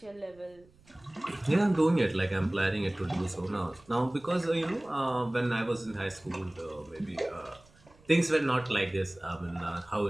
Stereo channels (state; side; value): noise; right; rumble, 28 dB below the sound